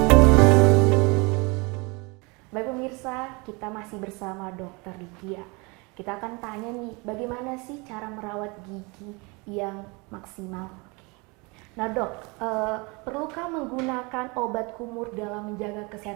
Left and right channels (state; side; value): quieter; left; 28.1 dB